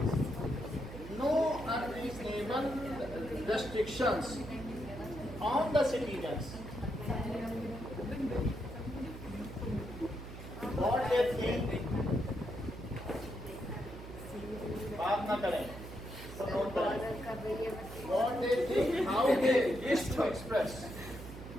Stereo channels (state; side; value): noise; right; hum, 12 dB below the sound